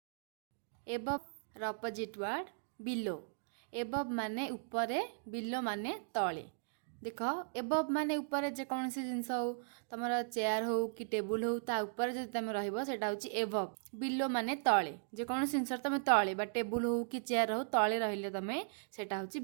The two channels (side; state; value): left; silent; digital silence